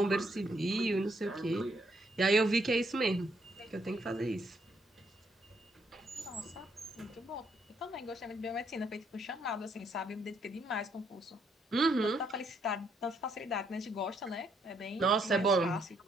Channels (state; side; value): normal; both; correlation 0.72